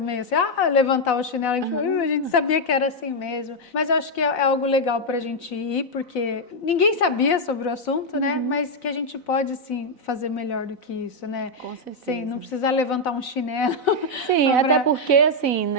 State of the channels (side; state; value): right; late; 4.0 ms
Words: assim, levantar o chinelo, a gente sabia que era assim mesmo. Mas eu acho que é algo legal pra gente ir, porque ninguém sabia sobre o assunto, né? Mas que a gente pode, sim, fazer melhor do que isso, né? Com certeza. Sim, não precisar levantar um chinelo. Sim, até porque, assim,